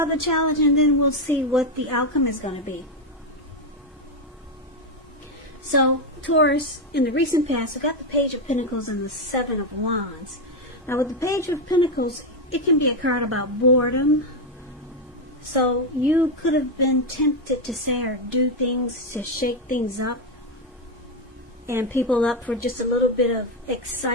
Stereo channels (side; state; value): both; normal; correlation 0.06